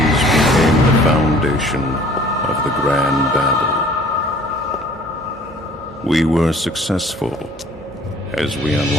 became the foundation of the Grand Babel. We were successful as we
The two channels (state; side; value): normal; both; correlation 0.52